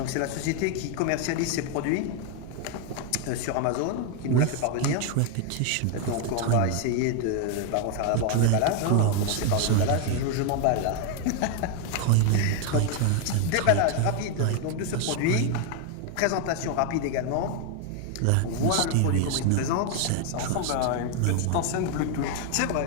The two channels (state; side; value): different; both; correlation 0.01